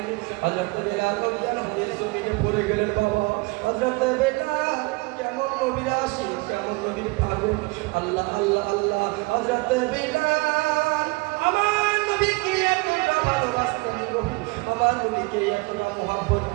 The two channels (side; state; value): left; quieter; 26.8 dB